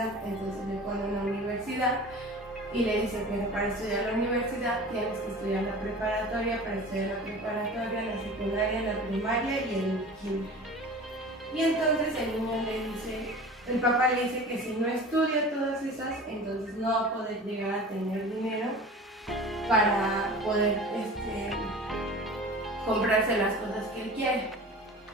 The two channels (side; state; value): both; normal; correlation 0.38